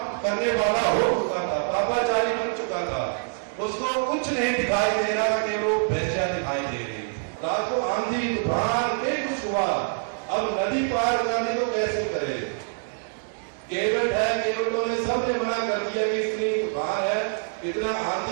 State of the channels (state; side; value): silent; left; digital silence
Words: करने वाला हो चुका था, पापाचारी बन चुका था, उसको कुछ नहीं दिखाई दे रहा कि वो वेश्या दिखाई दे रही। रात को आंधी तूफान में कुछ हुआ, अब नदी पार करने को कैसे करे। केवट है, केवटों ने सबने मना कर दिया कि इतनी तूफान है, इतना